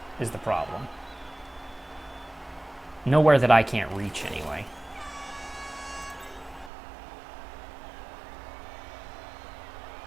is the problem. Nowhere that I can't reach, anyway.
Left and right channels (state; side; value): drops out; left; at 6.7 s